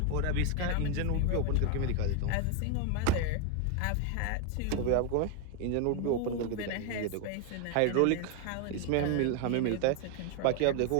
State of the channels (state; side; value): different; both; correlation 0.01